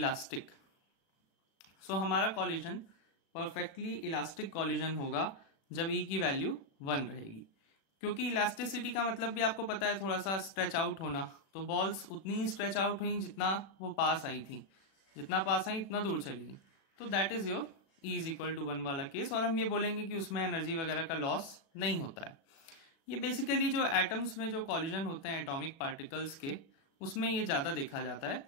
सो हमारा कॉलिजन परफेक्टली इलास्टिक कॉलिजन होगा जब ई की वैल्यू 1 रहेगी, क्योंकि इलास्टिसिटी का मतलब भी आपको पता है थोड़ा सा स्ट्रेच आउट होना। तो बॉल्स उतनी ही स्ट्रेच आउट हुई जितना वो पास आई थी, जितना पास आई उतना दूर चली गई। तो that is your E is equal to 1 वाला केस, और हम ये बोलेंगे कि उसमें एनर्जी वगैरह का लॉस नहीं होता है। ये बेसिकली जो एटम्स में जो कॉलिजन होते हैं एटॉमिक पार्टिकल्स के, उसमें ये ज्यादा देखा जाता है।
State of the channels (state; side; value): late; right; 36 ms